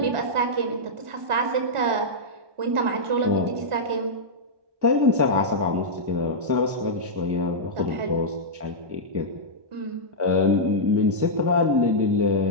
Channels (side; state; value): left; late; 1.4 ms